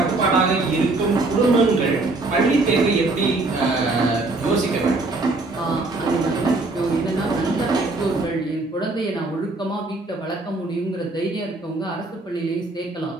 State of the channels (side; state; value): left; quieter; 3.2 dB